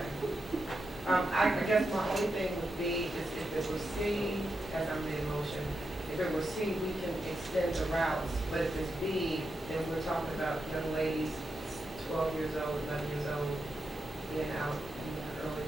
I guess my only thing would be is if it was C, as I made a motion, if it was C, we can extend the routes, but if it's B, then we're talking about young ladies, 12 years old, 11 years old, being out in the early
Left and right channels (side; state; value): both; normal; correlation 0.86